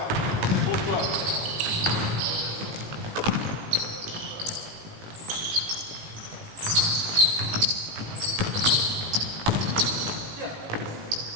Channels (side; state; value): left; late; 18 ms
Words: C'est bon choix. Tiens.